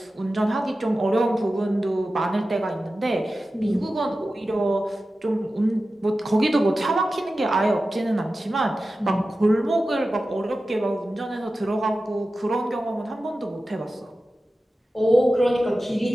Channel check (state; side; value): normal; both; correlation 0.94